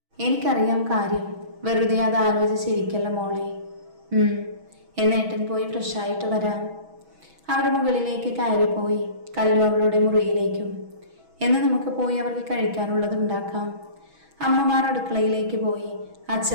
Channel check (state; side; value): late; left; 6.2 ms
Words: എനിക്കറിയാം കാര്യം. വെറുതെ അത് ആലോചിച്ചിരിക്കല്ല മോളെ. എന്നേട്ടൻ പോയി ഫ്രഷായിട്ട് വരാം. അവർ മുകളിലേക്ക് കയറിപ്പോയി. കല്ലു അവളുടെ മുറിയിലേക്കും. എന്ന് നമുക്ക് പോയി അവർക്ക് കഴിക്കാനുള്ളത് ഉണ്ടാക്കാം. അമ്മമാർ അടുക്കളയിലേക്ക് പോയി.